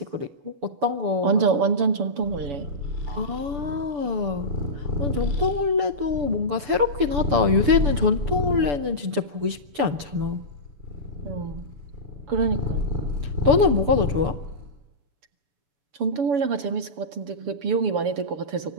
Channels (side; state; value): left; late; 6.9 ms